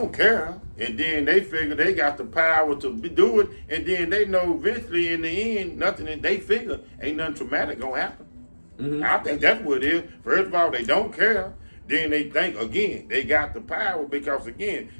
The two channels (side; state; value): both; inverted; correlation -1.00